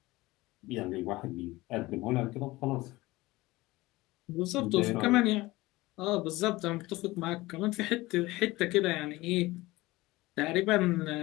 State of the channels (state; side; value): quieter; right; 19.8 dB